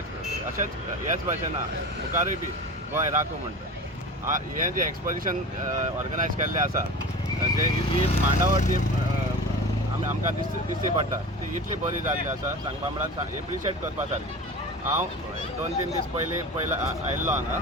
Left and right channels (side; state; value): both; normal; correlation 0.33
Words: अशेंच ह्याच भाशेन मुखारूय बी गोंय राखूं म्हणटा. हें जें एक्सपोजिशन ऑर्गनायज केल्लें आसा जे ही मांडावळ जी आमकां दिसची पडटा ती इतली बरी जाल्ली आसा सांगपा म्हळ्यार एप्रिशिएट करपा सारकी. हांव 2-3 दीस पयलीं आयिल्लो हांगा